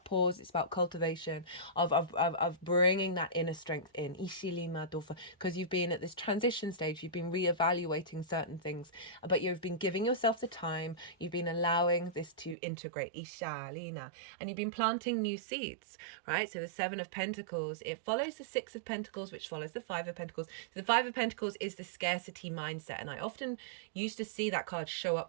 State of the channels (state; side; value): drops out; left; at 12.6 s